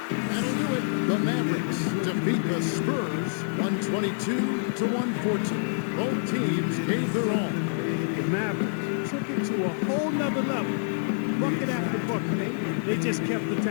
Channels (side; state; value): right; silent; 60 dB below the other